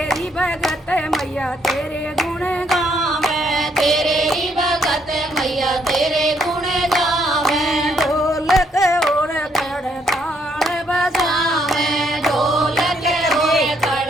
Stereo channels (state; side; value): normal; both; correlation 0.71